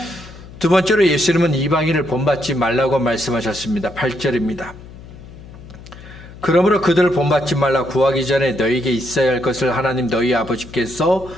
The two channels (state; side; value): noise; left; hum, 17 dB below the sound